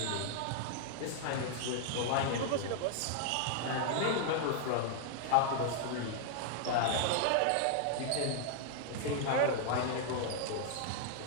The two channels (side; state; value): both; different; correlation 0.00